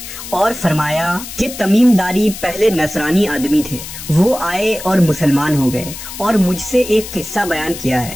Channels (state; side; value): noise; left; hiss, 11 dB below the sound